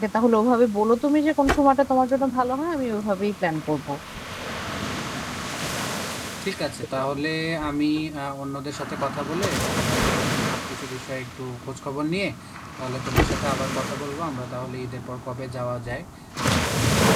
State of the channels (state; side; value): identical; both; correlation 1.00